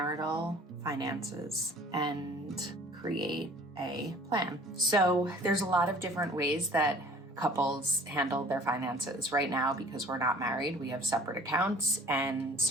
finances and create a plan. So there's a lot of different ways that couples handle their finances. Right now, because we're not married, we have separate accounts and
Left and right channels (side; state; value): both; normal; correlation 0.50